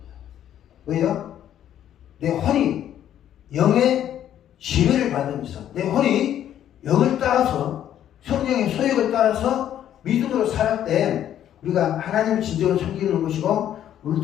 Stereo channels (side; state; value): right; quieter; 10.8 dB